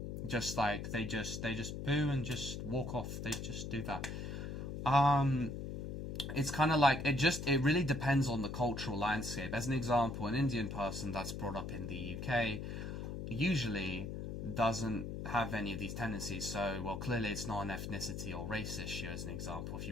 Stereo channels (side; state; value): left; noise; hum, 5 dB below the sound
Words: Just like they just boo and just walk off. They just do that. It's kind of like it really depends on the cultural landscape. As an example, an Indian person that's brought up in the UK usually doesn't have any of these tendencies. So, well, clearly it's not an ethnicity or race issue, as an example, if